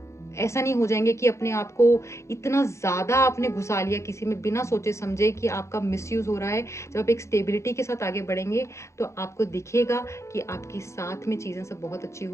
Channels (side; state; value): right; late; 0.14 ms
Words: ऐसा नहीं हो जाएंगे कि अपने आप को इतना ज़्यादा आपने घुसा लिया किसी में बिना सोचे समझे कि आपका मिसयूज़ हो रहा है। जब आप एक स्टेबिलिटी के साथ आगे बढ़ेंगे तो आपको दिखेगा कि आपके साथ में चीज़ें सब बहुत अच्छी